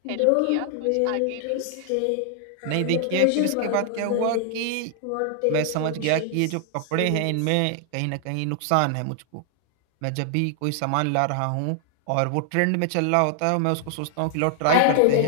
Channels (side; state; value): both; different; correlation 0.00